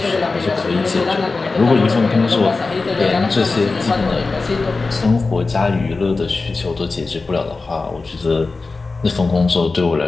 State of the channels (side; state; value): right; quieter; 3.8 dB